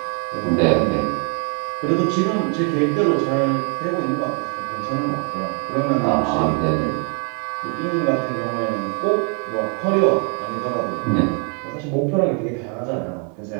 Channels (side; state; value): left; quieter; 36.0 dB